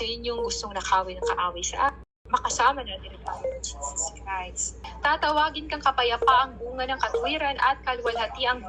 yun yung gustong nakawin ng kaaway sa akin. Makasama natin ang Panginoon Jesus Christ. Tatawagin kang kapayapaang bunga ng katwiran at kaluwalhatiang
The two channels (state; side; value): identical; both; correlation 1.00